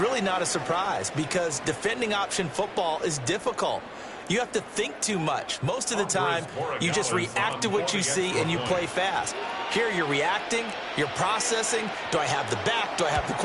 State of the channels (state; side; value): identical; both; correlation 1.00